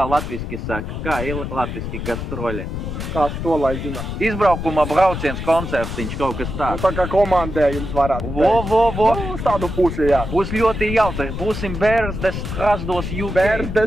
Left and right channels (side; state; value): left; noise; rumble, 5 dB below the sound